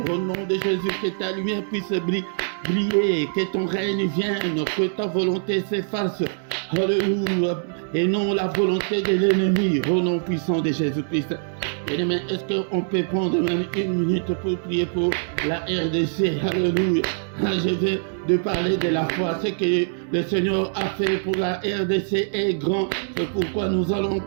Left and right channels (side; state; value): left; silent; digital silence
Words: Au nom de Jésus, que ta lumière puisse briller, que ton règne vienne, que ta volonté s'efface. Alléluia. Et non la volonté de l'ennemi. Au nom puissant de Jésus-Christ. Bien-aimé, est-ce qu'on peut prendre même une minute pour prier pour la RDC? Alléluia. Je viens de parler de la foi. Ce que le Seigneur a fait pour la RDC est grand. C'est pourquoi nous allons